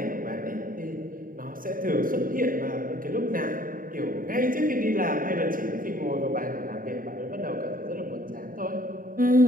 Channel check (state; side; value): late; left; 0.41 ms